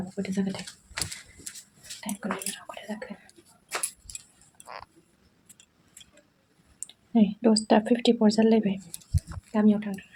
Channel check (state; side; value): identical; both; correlation 1.00